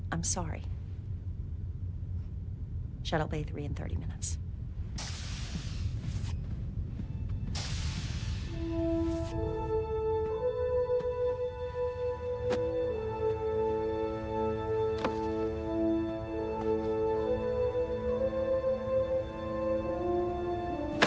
I'm sorry. Shuttle Bay 3 in 30 minutes.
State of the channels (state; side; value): identical; both; correlation 1.00